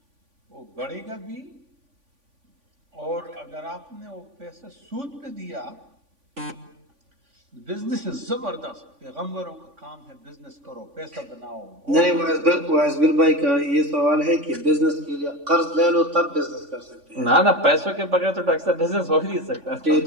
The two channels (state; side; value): late; left; 3.5 ms